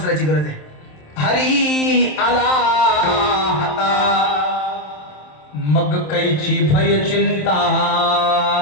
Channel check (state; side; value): late; right; 27 ms